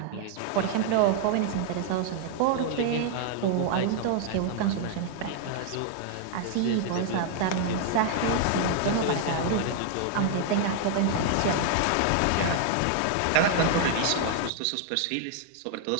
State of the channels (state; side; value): different; both; correlation 0.00